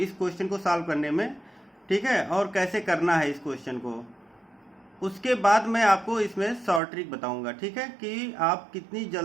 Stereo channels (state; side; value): drops out; left; at 6.8 s